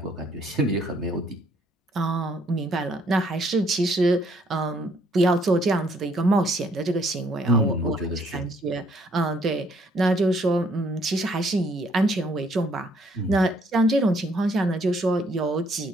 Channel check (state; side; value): normal; both; correlation 0.66